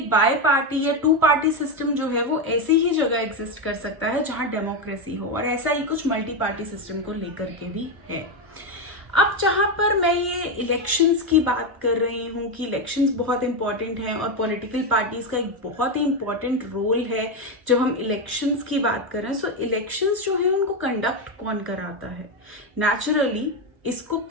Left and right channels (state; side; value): late; left; 1.0 ms